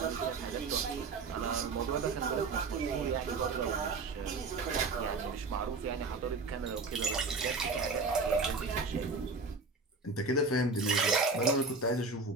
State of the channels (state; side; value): quieter; left; 3.9 dB